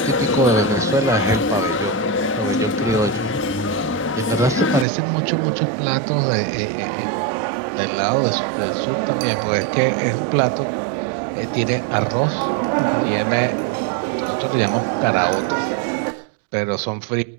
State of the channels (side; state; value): left; drops out; at 4.9 s